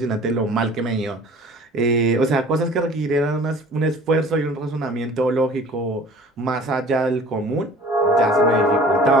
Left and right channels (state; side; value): normal; both; correlation 0.47